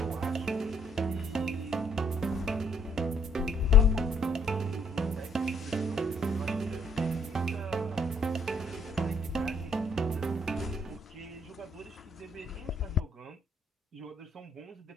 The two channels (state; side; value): normal; both; correlation 0.65